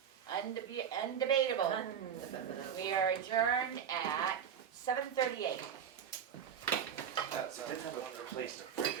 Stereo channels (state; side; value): quieter; left; 8.3 dB